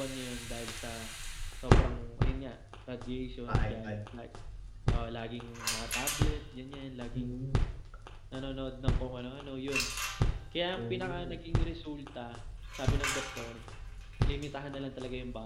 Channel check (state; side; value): identical; both; correlation 1.00